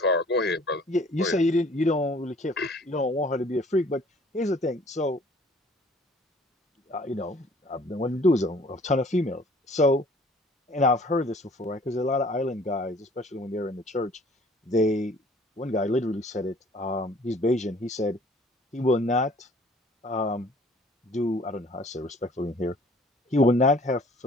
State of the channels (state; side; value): normal; both; correlation 0.54